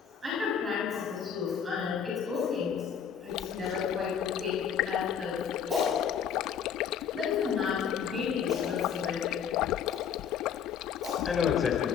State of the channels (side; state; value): right; quieter; 7.8 dB